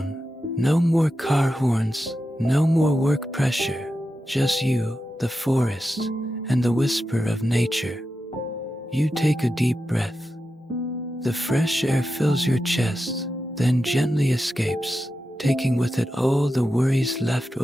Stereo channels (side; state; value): both; normal; correlation 0.90